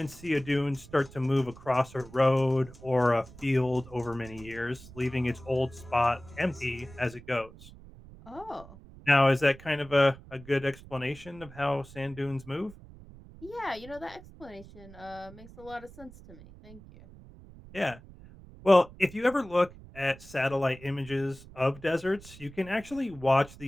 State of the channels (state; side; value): noise; right; rumble, 19 dB below the sound